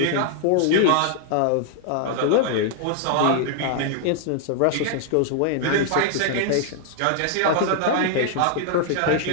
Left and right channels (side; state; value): both; different; correlation -0.01